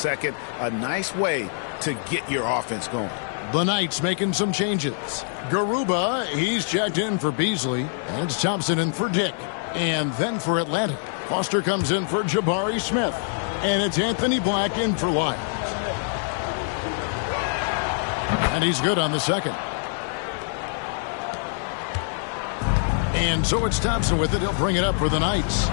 A nice way to get your offense going. The Knights making some changes. Garuba, he's checked in for Beasley. And it's Thompson in for Dick. And then for Atlanta, Foster comes in for Jabari Smith. And it's Anthony Black in for Lyles. And he's good on the second. And so it's Thompson with it. He'll bring it up for the Knights.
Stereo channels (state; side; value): silent; right; digital silence